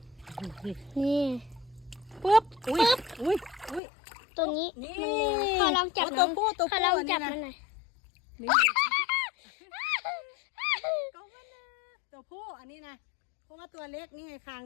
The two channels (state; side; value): drops out; right; at 3.8 s